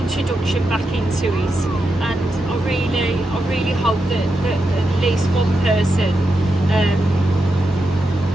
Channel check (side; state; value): both; normal; correlation 0.86